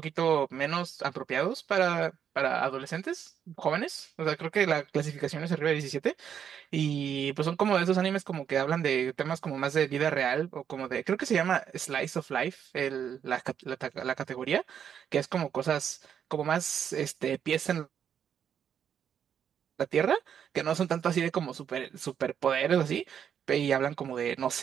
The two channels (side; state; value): left; quieter; 8.4 dB